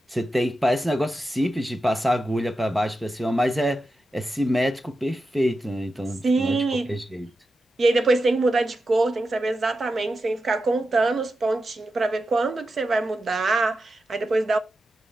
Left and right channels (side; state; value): both; normal; correlation 0.90